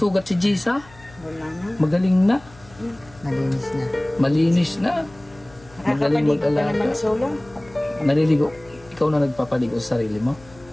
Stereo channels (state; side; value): noise; left; hum, 24 dB below the sound